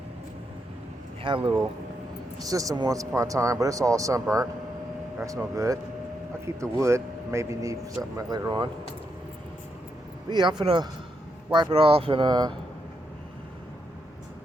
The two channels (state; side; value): normal; both; correlation 0.81